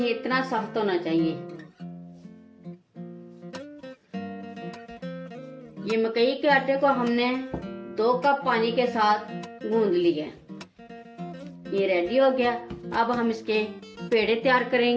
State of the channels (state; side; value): identical; both; correlation 1.00